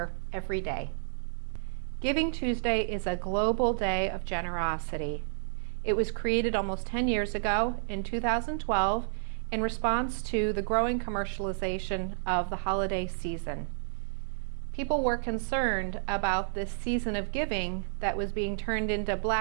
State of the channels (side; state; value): left; silent; digital silence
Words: every day. Giving Tuesday is a global day of generosity. It was created almost 10 years ago in 2012 in response to the growing commercialization of the holiday season. People were concerned about this season of giving that was being turned into